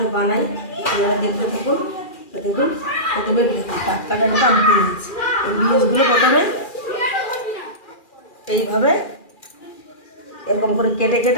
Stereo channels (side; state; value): right; late; 2.4 ms